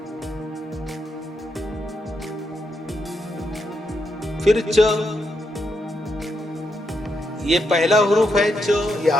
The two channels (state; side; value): normal; both; correlation 0.81